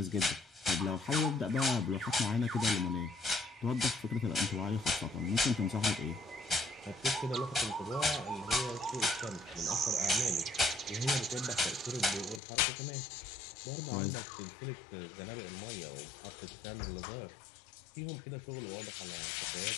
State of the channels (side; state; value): right; drops out; at 12.4 s